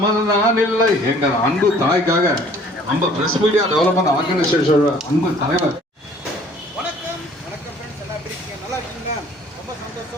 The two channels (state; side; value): normal; both; correlation 0.55